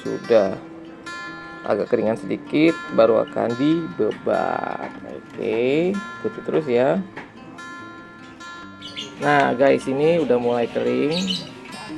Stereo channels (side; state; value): both; identical; correlation 1.00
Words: agak keringan sedikit baru akan dibebat. Oke, ikuti terus ya. Nah guys, ini udah mulai kering